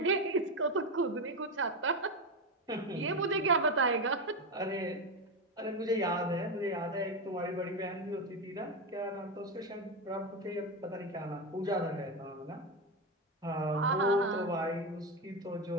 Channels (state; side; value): normal; both; correlation 0.13